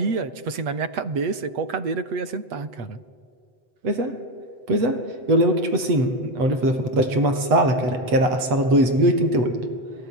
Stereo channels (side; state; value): left; late; 7.9 ms